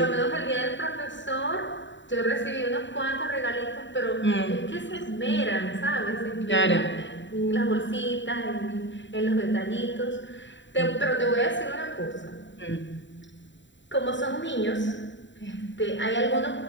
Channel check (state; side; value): late; right; 0.54 ms